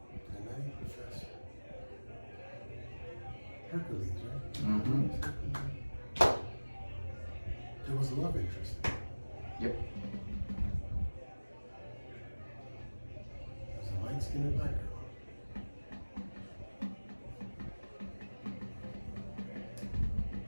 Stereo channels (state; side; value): inverted; both; correlation -1.00